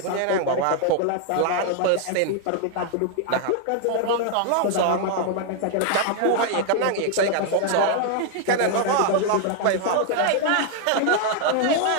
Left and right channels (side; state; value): both; different; correlation 0.00